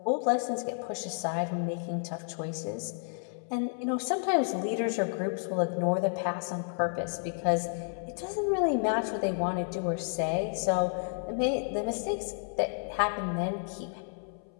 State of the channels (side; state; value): right; silent; 57 dB below the other